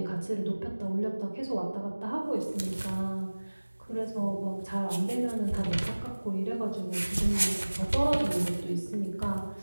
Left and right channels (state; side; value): inverted; both; correlation -1.00